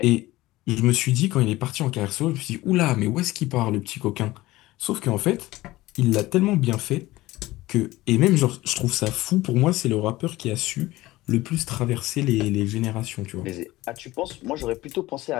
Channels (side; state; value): right; quieter; 18.1 dB